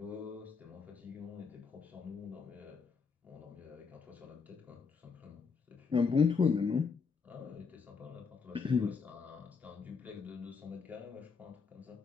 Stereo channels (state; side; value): quieter; right; 5.4 dB